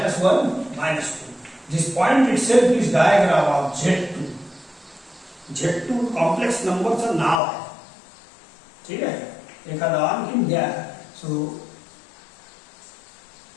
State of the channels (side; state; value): right; drops out; at 7.4 s